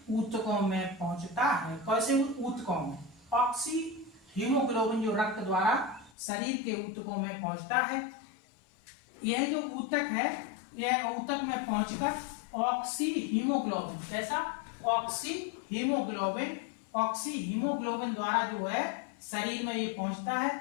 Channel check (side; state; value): right; drops out; at 6.2 s